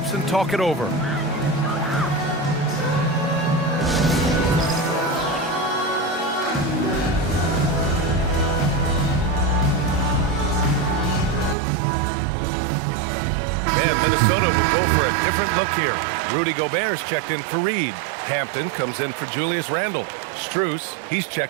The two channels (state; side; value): drops out; left; at 11.6 s